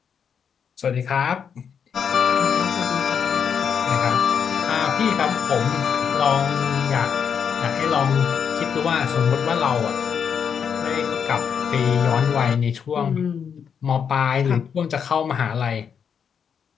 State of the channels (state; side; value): quieter; right; 7.2 dB